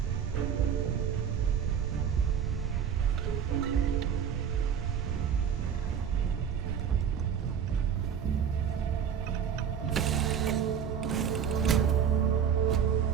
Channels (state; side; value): quieter; left; 7.9 dB